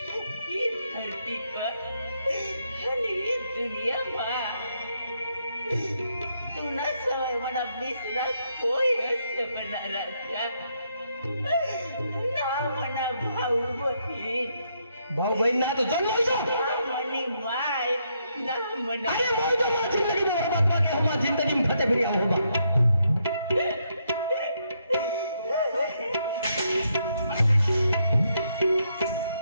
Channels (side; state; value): both; inverted; correlation -0.77